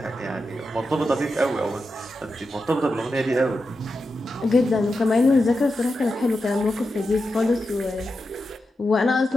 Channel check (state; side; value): normal; both; correlation 0.89